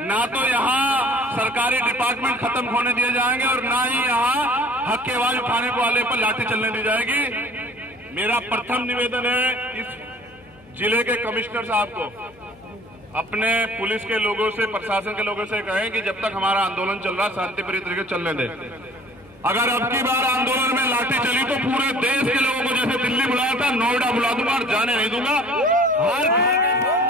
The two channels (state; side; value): noise; left; hum, 28 dB below the sound